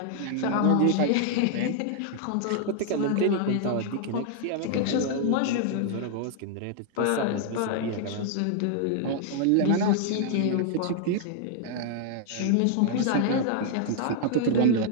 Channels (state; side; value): different; both; correlation -0.01